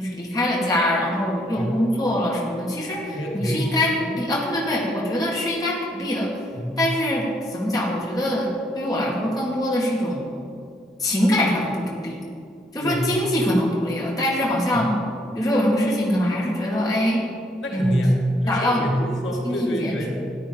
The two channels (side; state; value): both; normal; correlation 0.70